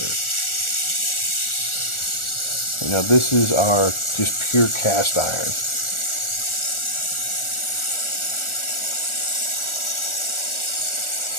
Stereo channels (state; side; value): late; right; 1.4 ms